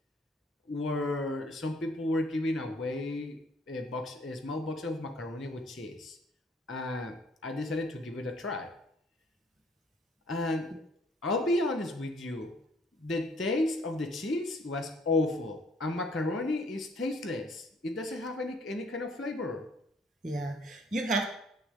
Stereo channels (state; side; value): normal; both; correlation 0.61